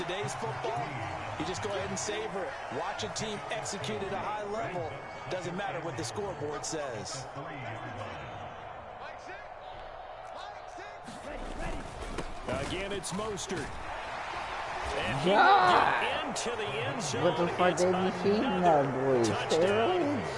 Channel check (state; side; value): identical; both; correlation 1.00